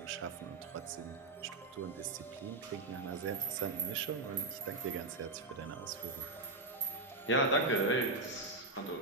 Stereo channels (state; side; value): quieter; left; 3.2 dB